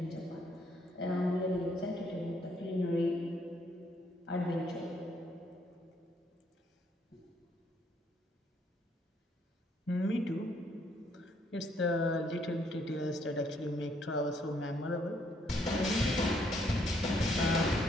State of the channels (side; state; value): both; normal; correlation 0.70